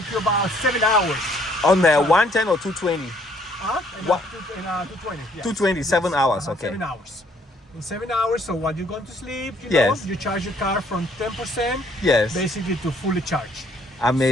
you about 7 hours. On the 110 or 220? What? 220. Yes. 220, 7 hours, okay. 7 hours. In 7 hours, so while you're going to sleep, Yes. you charge your car from 10% Yes. basically to fully charge.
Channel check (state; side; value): normal; both; correlation 0.64